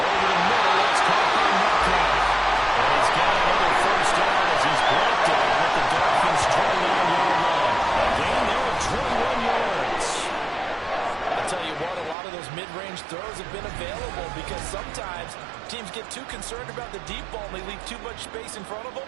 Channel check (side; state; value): left; drops out; at 12.2 s